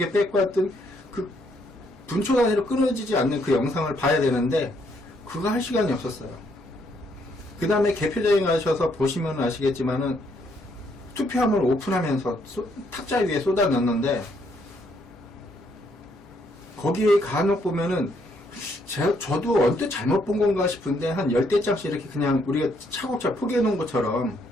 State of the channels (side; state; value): both; normal; correlation 0.71